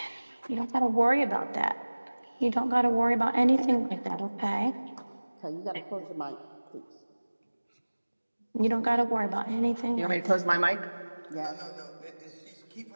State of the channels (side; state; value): both; inverted; correlation -1.00